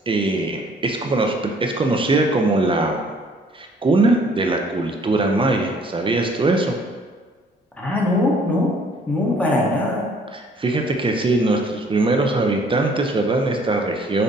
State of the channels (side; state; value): both; normal; correlation 0.59